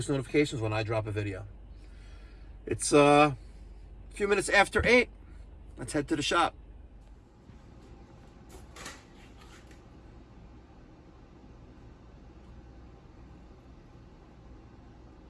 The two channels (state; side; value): identical; both; correlation 1.00